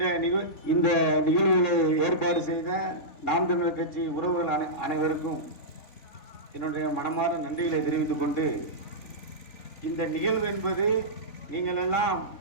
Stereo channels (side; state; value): right; late; 3.9 ms